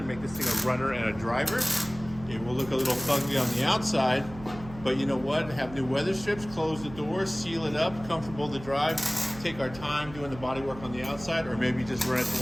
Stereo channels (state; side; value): noise; right; hum, 15 dB below the sound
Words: make this thing a runner and a driver. It will look a little fugly on the outside, but you know what? Have new weather strips, close the doors, seal it up, comfortable to drive, take our time doing the body work on the outside, or maybe just run it to